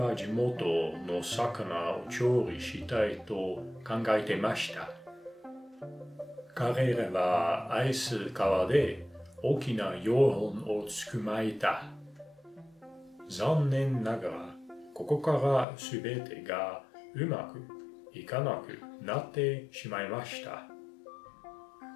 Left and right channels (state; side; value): drops out; right; at 15.7 s